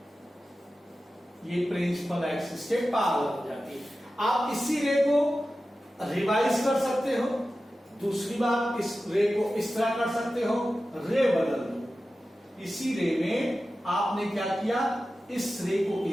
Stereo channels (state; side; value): normal; both; correlation 0.94